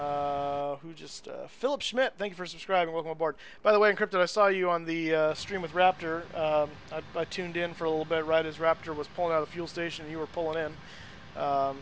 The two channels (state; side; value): identical; both; correlation 1.00